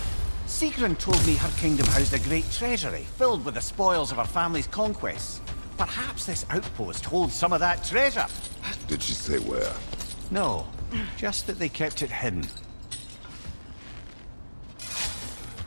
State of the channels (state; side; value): inverted; both; correlation -1.00